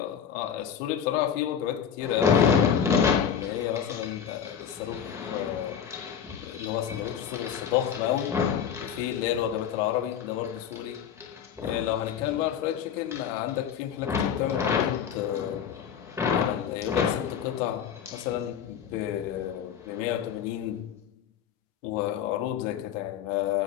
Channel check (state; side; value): quieter; right; 8.4 dB